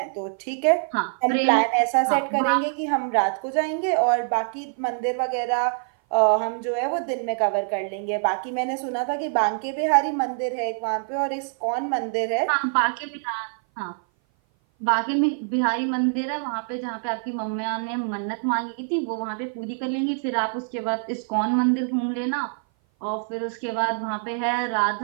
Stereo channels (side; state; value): left; silent; 57 dB below the other